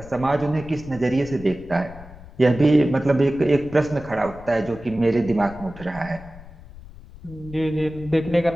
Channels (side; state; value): left; noise; rumble, 18 dB below the sound